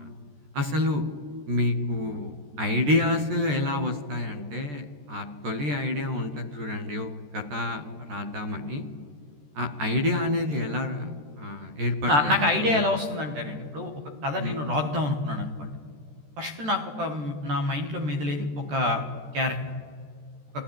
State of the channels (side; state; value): left; late; 14 ms